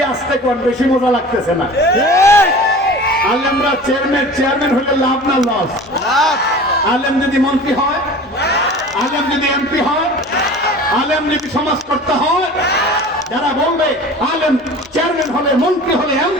আসতে কোন, বেশি মজা লাগতেছে না। ঠিক। আলেমরা চেয়ারম্যান হলে লাভ না লস? আলেম যদি মন্ত্রী হয়, আলেম যদি এমপি হয়, আলেম যদি সমাজ করতে হয়, যারা বলবে আলেম চেয়ারম্যান হলে, মন্ত্রী হলে,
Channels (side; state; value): both; normal; correlation 0.40